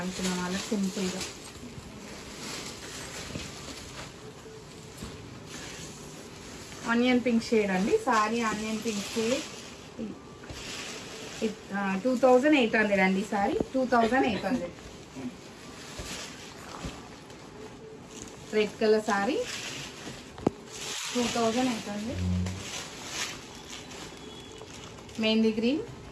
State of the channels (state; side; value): identical; both; correlation 1.00